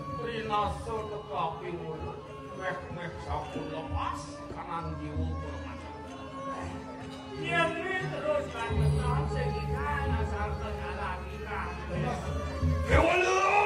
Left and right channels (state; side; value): identical; both; correlation 1.00